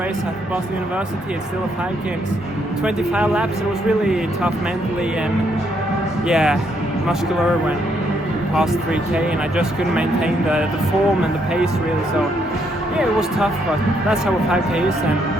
at Boston University, it's still a 5K. It's 25 laps. It was really tough mentally and muscular when past 3K, and I just couldn't maintain the form and the pace really. So it was tough, but that's how a 5K is, and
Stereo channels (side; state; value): both; normal; correlation 0.73